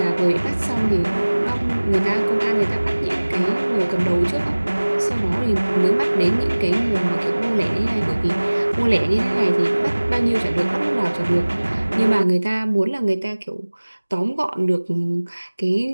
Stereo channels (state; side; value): inverted; both; correlation -1.00